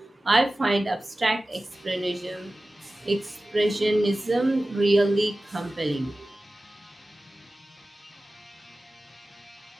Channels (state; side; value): normal; both; correlation 0.96